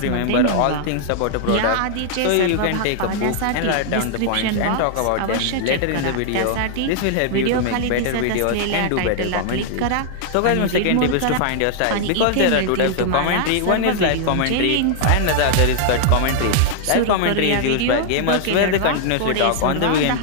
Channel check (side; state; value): both; different; correlation 0.00